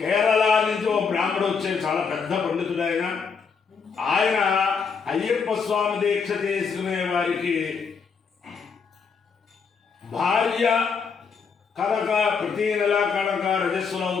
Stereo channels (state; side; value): quieter; right; 5.7 dB